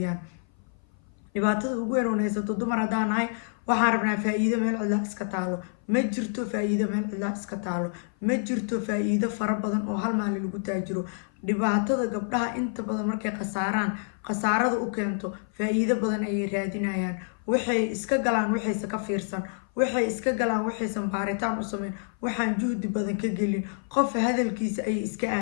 dhibaatada ugu weyn oo haysato dumar haddaan nahay, waxaan rabnaa faa'iido meel cidla iska taalo. ma jirto faa'iido meel cidla iska taalo, ma jirto faa'iido fara badan oo hal maalin lagu taajiro. dhibaatada gabdhaha inta badan markay khasaarada u keento faa'iido badan ayay raadinayaan. waxay iska galaan waxayse ka fiirsan, waxay iska galaan waxaysan baaritaan u sameyn, waxaan juhdi badan ka gelin. qof hadalkiisa ayay iska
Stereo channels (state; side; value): silent; right; 57 dB below the other